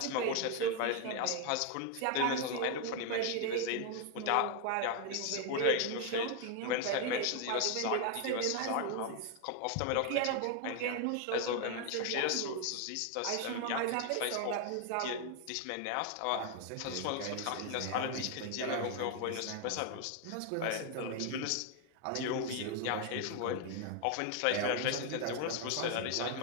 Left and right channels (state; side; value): different; both; correlation 0.01